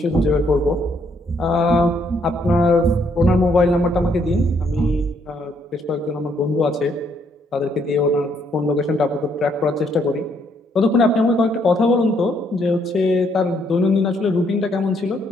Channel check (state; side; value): normal; both; correlation 0.71